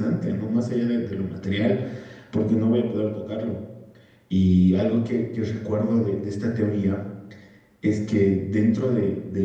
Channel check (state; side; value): identical; both; correlation 1.00